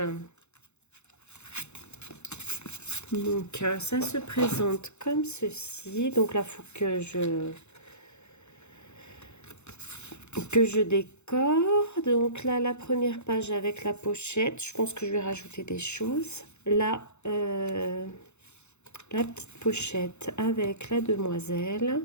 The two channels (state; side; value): late; right; 0.82 ms